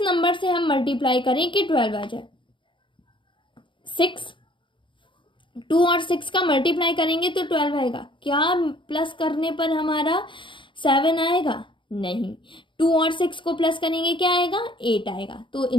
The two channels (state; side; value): late; right; 0.24 ms